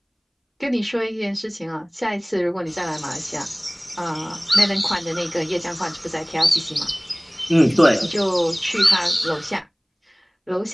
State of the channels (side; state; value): both; identical; correlation 1.00